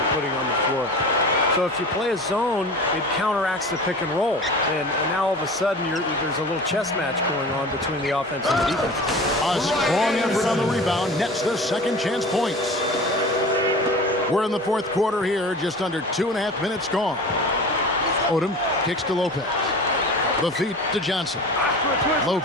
putting on the floor. So if you play a zone, it counteracts the pick and roll. And now all of a sudden, there's a little chess match going on between the offense and the defense. A strong effort on the rebound nets the second chance points. We're in the fourth quarter here, just under 2.5 minutes gone. Odom kicks to Lopez. The feet to Johnson.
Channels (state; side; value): normal; both; correlation 0.36